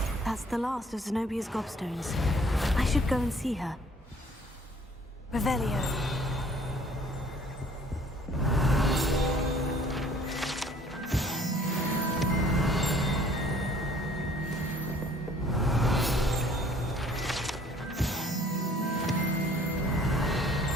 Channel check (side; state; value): both; normal; correlation 0.56